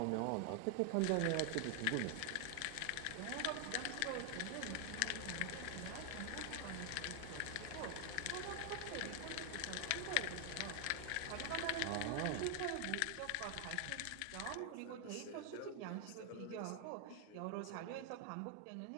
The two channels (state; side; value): different; both; correlation 0.00